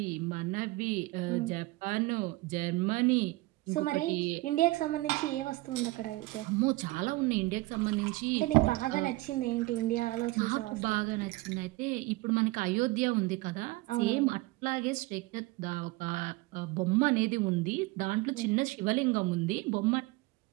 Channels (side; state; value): left; quieter; 20.9 dB